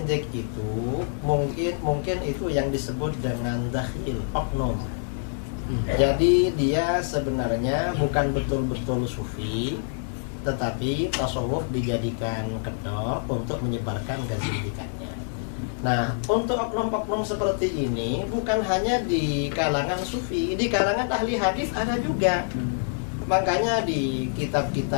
itu mungkin itu yang disebut dengan dakhil, oknum. Jadi dia sebenarnya bukan betul-betul sufi, tetapi tasawuf dijadikan kedok untuk menyebarkan kezindikannya. Nah, untuk oknum-oknum seperti ini bukan hanya di kalangan sufi, di kalangan ahli hadis ada juga. Makanya di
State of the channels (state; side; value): silent; right; 60 dB below the other